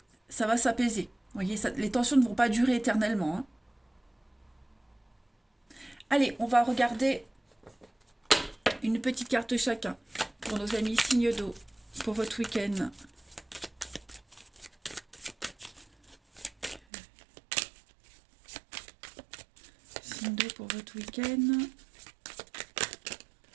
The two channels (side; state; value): left; drops out; at 16.8 s